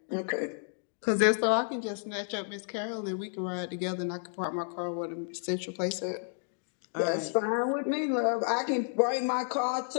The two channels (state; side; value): silent; right; digital silence